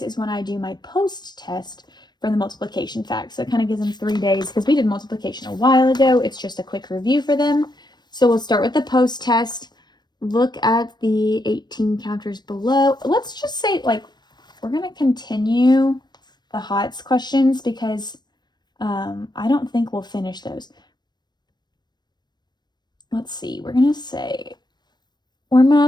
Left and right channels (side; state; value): right; late; 0.21 ms